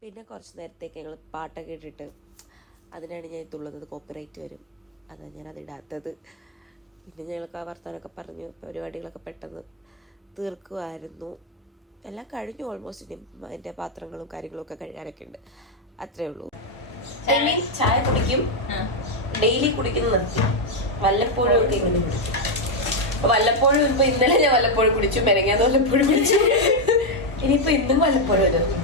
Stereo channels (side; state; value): both; normal; correlation 0.02